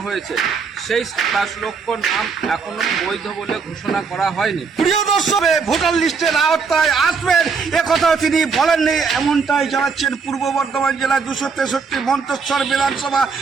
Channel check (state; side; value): quieter; left; 5.3 dB